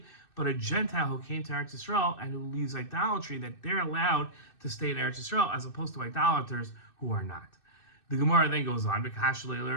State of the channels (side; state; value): right; late; 2.6 ms